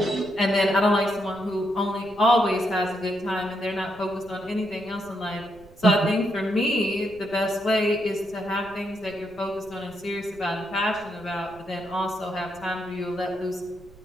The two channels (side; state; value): right; noise; rumble, 24 dB below the sound